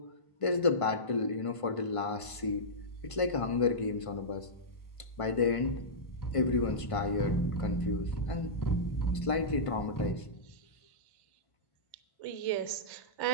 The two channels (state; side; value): late; right; 1.5 ms